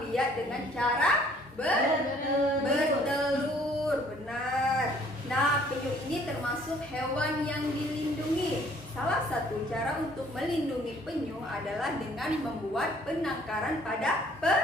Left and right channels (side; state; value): both; normal; correlation 0.58